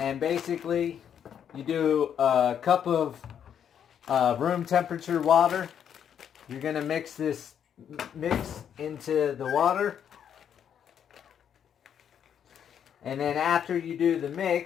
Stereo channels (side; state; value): right; quieter; 8.7 dB